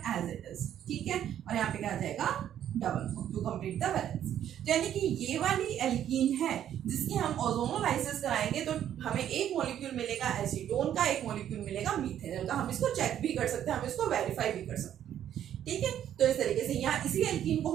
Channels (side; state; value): left; quieter; 10.5 dB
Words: एज इट इज। ठीक है, और यहाँ पे क्या आ जाएगा, double bond to complete the balance. यानी कि ये वाली एल्कीन है जिसकी हम ओजोनोलाइसिस कराएंगे तो हमें एक मॉलिक्यूल मिलेगा एसीटोन का, एक मॉलिक्यूल मिलेगा मीथेनॉल का। हम इसको चेक भी कर सकते हैं, हम इसको वेरीफाई भी कर सकते हैं। ठीक है, तो इस तरीके से यहाँ इसी एल्कीन को